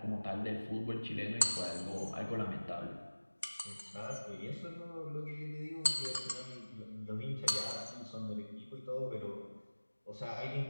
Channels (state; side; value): inverted; both; correlation -1.00